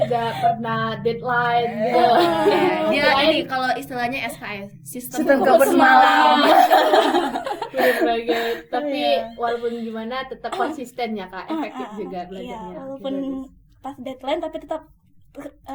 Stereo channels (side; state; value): both; identical; correlation 1.00